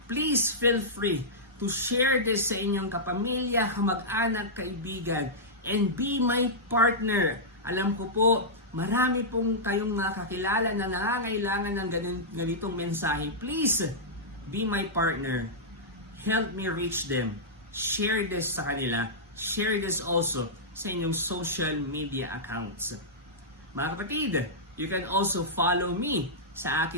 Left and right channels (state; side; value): normal; both; correlation -0.12